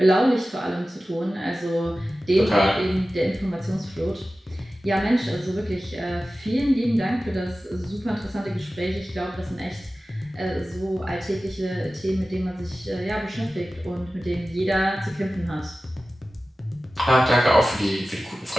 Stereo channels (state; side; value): normal; both; correlation 0.96